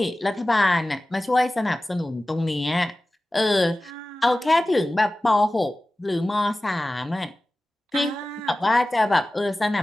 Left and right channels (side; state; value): both; normal; correlation 0.96